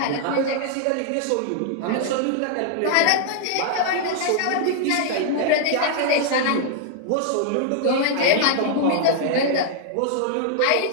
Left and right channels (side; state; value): both; different; correlation -0.01